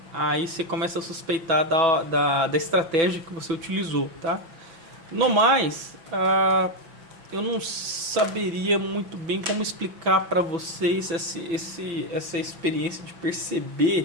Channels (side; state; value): left; late; 5.9 ms